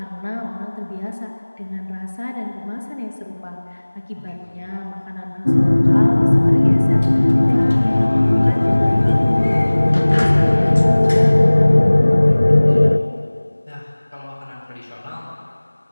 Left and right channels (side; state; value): both; inverted; correlation -1.00